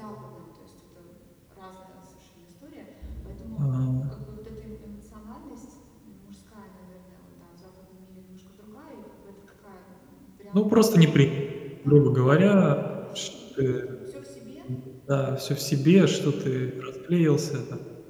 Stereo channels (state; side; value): identical; both; correlation 1.00